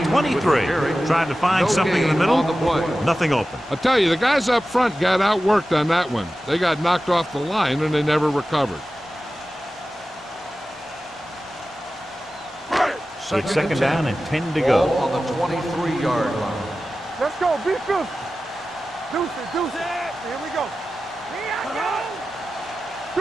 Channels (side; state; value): both; normal; correlation 0.94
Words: 23. Trying to find something in the middle. Nothing open. I'll tell you, the guys up front got outworked on that one. They got knocked off the line and they never recovered. It's 2nd down and 10 to Ball go. on the 23-yard line. Let's go. Be fierce. Deuce it. Deuce it. Here we go. Here I